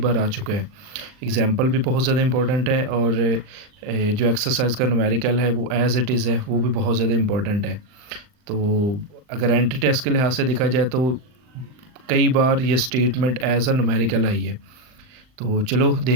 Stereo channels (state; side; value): late; left; 39 ms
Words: आ चुका है। एग्जाम्पल भी बहुत ज़्यादा इम्पोर्टेंट है और जो एक्सरसाइज का न्यूमेरिकल है वो एज़ इट इज़ है, वो भी बहुत ज़्यादा इम्पोर्टेंट है। तो अगर एंट्री टेस्ट के लिहाज से देखा जाए तो कई बार ये स्टेटमेंट एज़ अ न्यूमेरिकल आई है। तो चलो